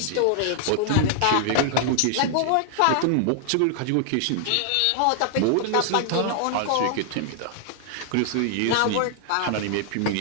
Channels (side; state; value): both; different; correlation -0.01